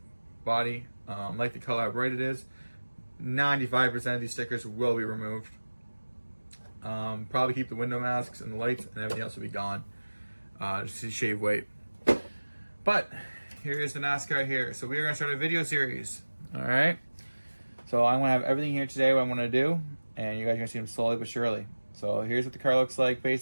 body. Like the color how bright it is. 95% of these stickers will be removed. Probably keep the window masks and the lights, and everything else will be gone. Just to shave weight. But here's the NASCAR here. So we are going to start a video series. Alright? So I'm going to have everything here today, what I'm going to do, and you guys are going to see them slowly but surely. So here's what the car looks like,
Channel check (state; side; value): inverted; both; correlation -1.00